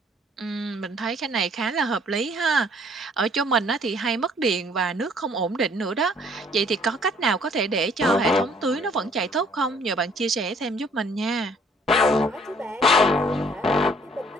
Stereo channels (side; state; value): both; normal; correlation 0.60